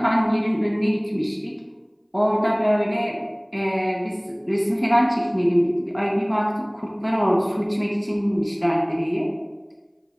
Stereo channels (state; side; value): identical; both; correlation 1.00